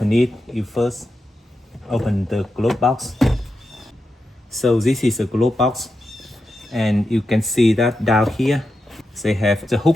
it, you first open the glove box. So this is a glove box and you can see that down here they have the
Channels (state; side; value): normal; both; correlation 0.88